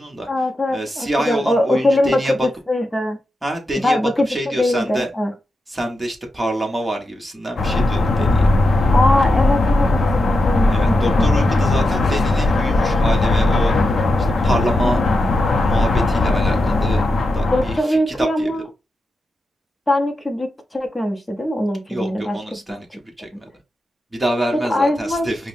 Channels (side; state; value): both; normal; correlation 0.88